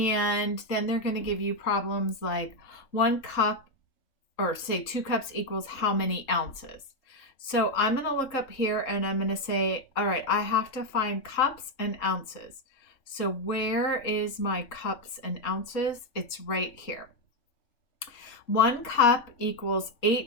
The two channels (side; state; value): right; late; 4.1 ms